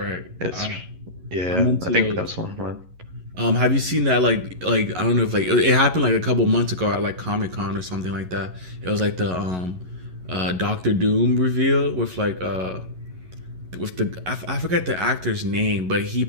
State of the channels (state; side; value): late; left; 11 ms